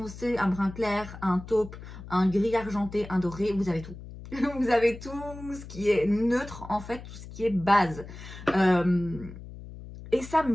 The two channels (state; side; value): noise; left; hum, 14 dB below the sound